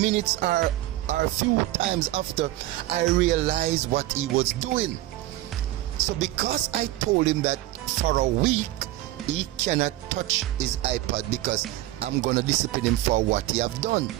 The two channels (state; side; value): quieter; left; 15.8 dB